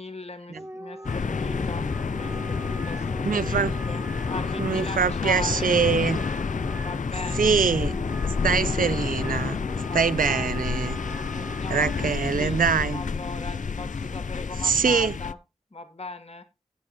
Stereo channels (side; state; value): both; normal; correlation 0.54